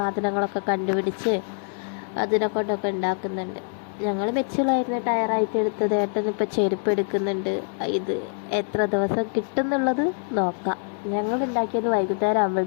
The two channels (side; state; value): right; silent; 62 dB below the other